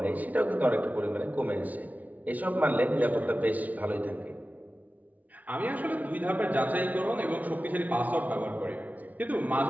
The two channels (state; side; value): late; left; 0.074 ms